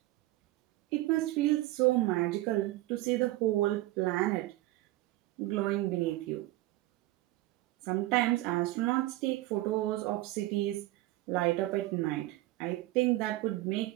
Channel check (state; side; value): quieter; left; 17.9 dB